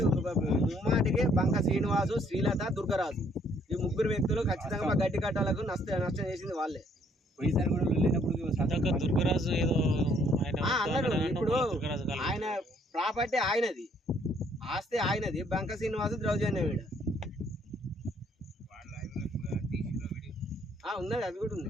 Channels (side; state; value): both; normal; correlation 0.65